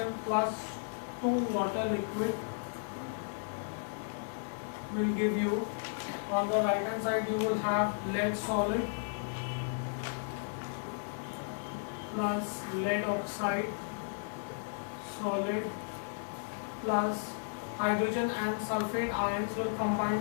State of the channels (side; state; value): right; silent; digital silence